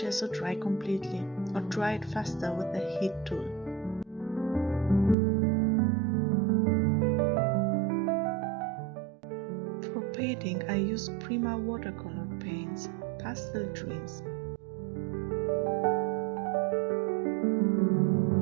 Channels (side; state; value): left; drops out; at 5.2 s